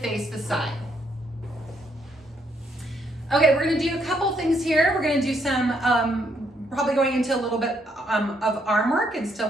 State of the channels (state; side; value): normal; both; correlation 0.73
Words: the side. Okay, we're gonna do a couple things here. We're gonna do some, probably going into a little bit of arm work and still